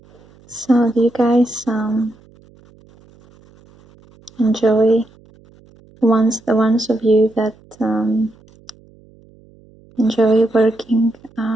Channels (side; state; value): right; noise; hum, 28 dB below the sound